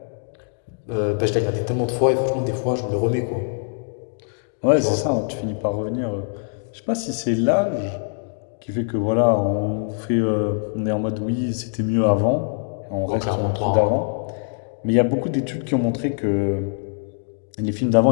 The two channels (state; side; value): silent; right; digital silence